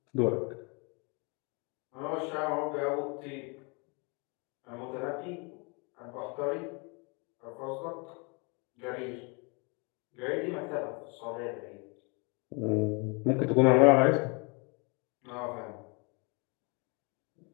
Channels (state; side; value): quieter; right; 32.0 dB